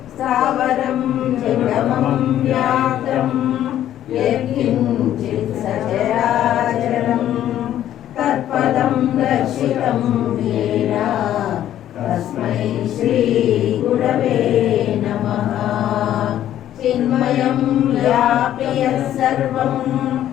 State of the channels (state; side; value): quieter; right; 11.8 dB